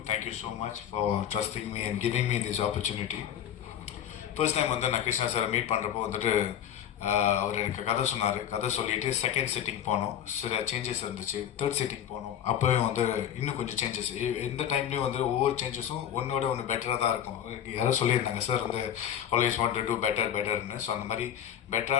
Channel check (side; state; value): right; quieter; 9.9 dB